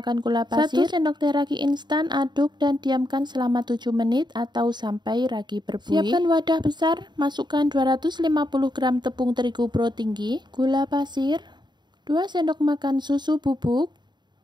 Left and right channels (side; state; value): left; late; 0.21 ms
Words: gula pasir, 1 sendok teh ragi instan, aduk dan diamkan selama 7 menit atau sampai ragi berbuih. Siapkan wadah besar, masukkan 250 gram tepung terigu pro tinggi, gula pasir, 2 sendok makan susu bubuk,